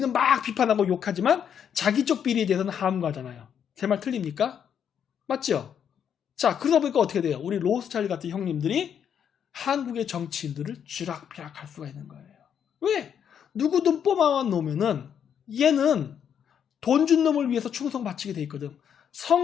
막 비판하고 욕하지만 자기 쪽 비리에 대해서는 함구하잖아요. 제 말 틀립니까? 맞죠? 자, 그러다 보니까 어떻게 돼요? 우리 로스차일드 같은 형님들이 한국의 정치인들을 쥐락펴락 할 수가 있는 거예요. 왜? 누구든 뽑아와 놓으면은 얘는 돈 준 놈을 위해서 충성 바치게 돼 있거든.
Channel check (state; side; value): quieter; right; 8.3 dB